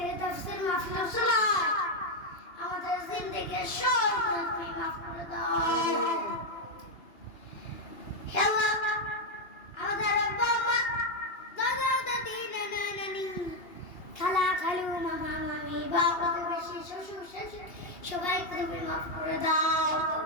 তাফসীর মাহফিল চলায় আমাদের জিন্দেগির সব গুনাহ মাফ করে দাও। হে আল্লাহ, আমাদের আব্বা আম্মা, দাদা দাদি, নানা নানি, খালা খালু, মামা মামি, বাবা প্রতিবেশী, শ্বশুর শাশুড়ি সবাইকে তুমি মাফ করে দাও।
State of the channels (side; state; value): right; late; 2.8 ms